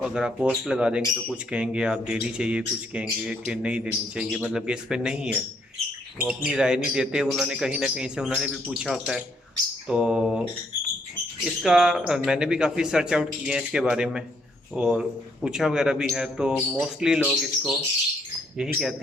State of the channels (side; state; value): both; normal; correlation 0.70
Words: اگر آپ پوسٹ لگا دیں گے تو کچھ کہیں گے آپ دینی چاہیے، کچھ کہیں گے کہ نہیں دینی چاہیے، مطلب کہ اس پہ نہیں ہے، وہ اپنی رائے نہیں دیتے، انہوں نے کہیں نہ کہیں سے انہوں نے بھی پوچھا ہوتا ہے۔ تو اس کا میں نے بھی کافی سرچ آؤٹ کیے ہیں اس کے بارے میں اور پوچھا وغیرہ بھی ہے، تو موسٹلی لوگ اس کو یہی